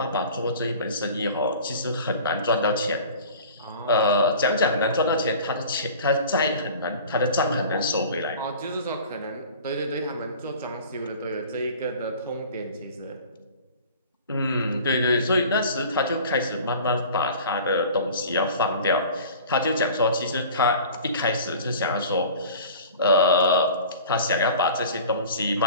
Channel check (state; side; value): inverted; both; correlation -0.42